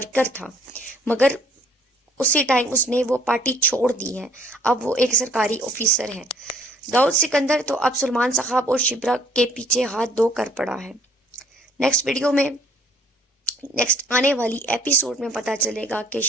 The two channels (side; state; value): both; normal; correlation 0.58